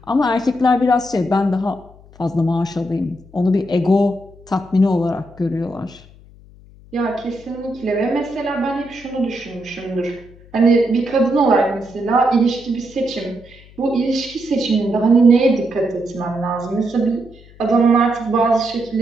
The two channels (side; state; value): left; noise; hum, 24 dB below the sound